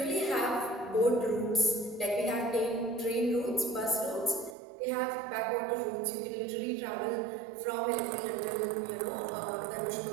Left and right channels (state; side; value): drops out; left; at 4.5 s